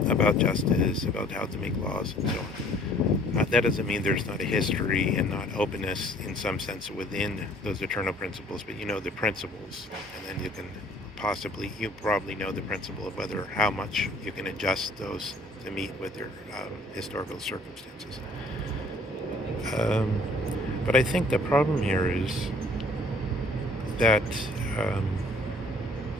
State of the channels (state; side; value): normal; both; correlation 0.56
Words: about justice, about how to make laws, and so on. That doesn't mean there's not a history and not openness in some sense within those eternal principles, but you know the principles, and then you probably know the principle of how much you can adjust those to meet with your historical circumstances. But I think the problem here is that